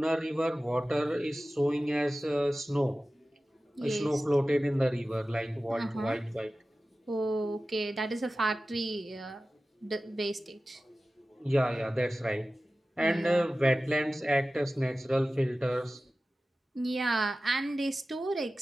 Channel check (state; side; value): normal; both; correlation 0.96